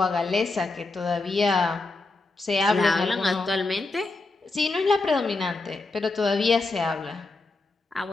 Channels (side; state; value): right; quieter; 3.4 dB